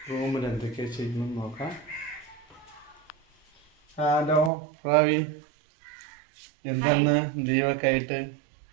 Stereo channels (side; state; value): left; drops out; at 4.5 s